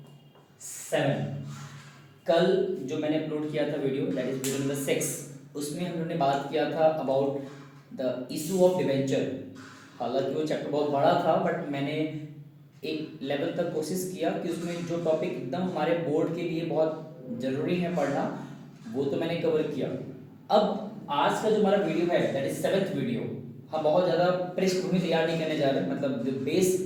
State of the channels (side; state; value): both; identical; correlation 1.00